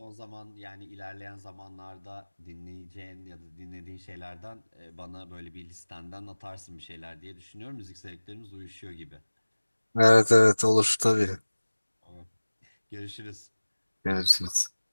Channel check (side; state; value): both; inverted; correlation -1.00